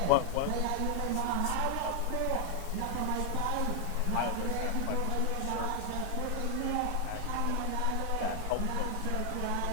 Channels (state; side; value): different; both; correlation 0.00